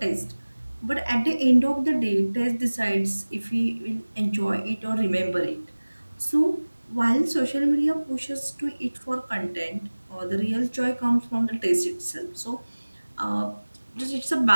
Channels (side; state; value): both; inverted; correlation -1.00